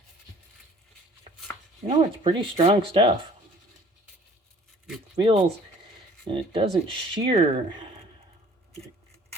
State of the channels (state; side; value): normal; both; correlation 0.53